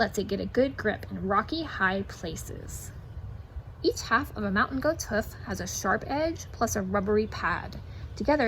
it get a good grip in rocky, high places. Each half of a mountain goat's hoof has a sharp edge plus a rubbery pad.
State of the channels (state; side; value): identical; both; correlation 1.00